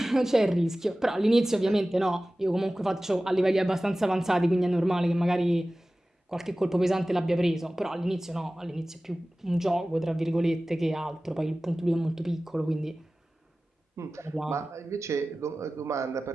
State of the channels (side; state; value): both; normal; correlation 0.97